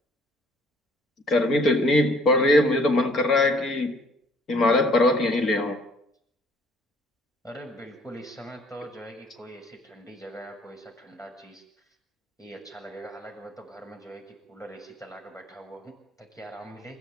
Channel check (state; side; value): normal; both; correlation 0.59